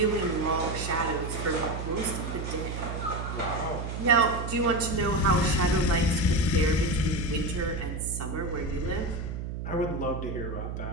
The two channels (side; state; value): right; noise; hum, 5 dB below the sound